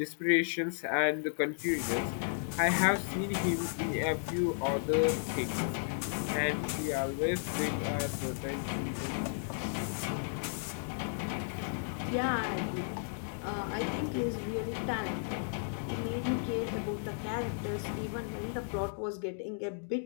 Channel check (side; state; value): right; silent; digital silence